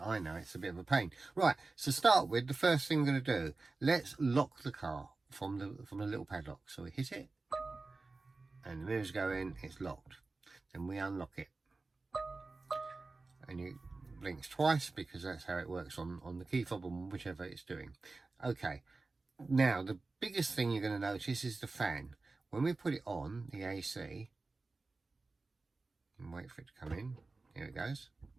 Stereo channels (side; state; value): left; quieter; 3.6 dB